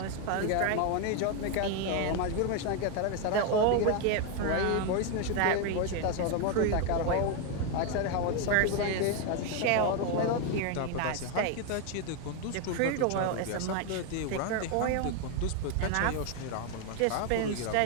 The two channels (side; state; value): both; different; correlation 0.01